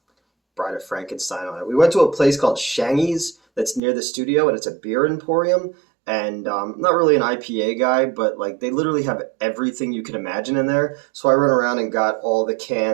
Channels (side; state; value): left; drops out; at 3.8 s